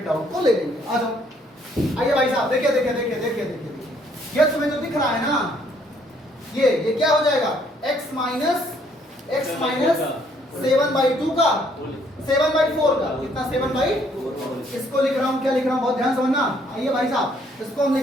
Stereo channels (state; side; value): normal; both; correlation 0.66